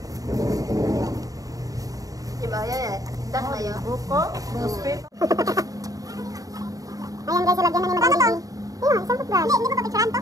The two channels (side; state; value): left; late; 0.17 ms